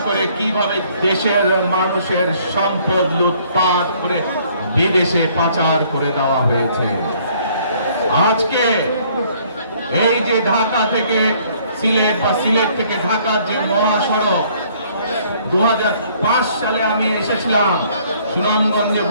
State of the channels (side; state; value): both; inverted; correlation -0.61